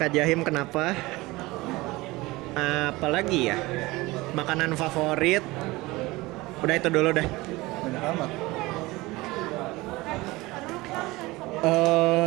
Jahim kenapa? Apalagi ya? Makanan favorit. Udah itu dulu deh. Banyak amat.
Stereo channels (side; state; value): left; quieter; 21.0 dB